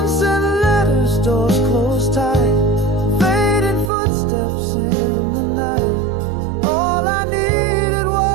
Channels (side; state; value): left; drops out; at 3.9 s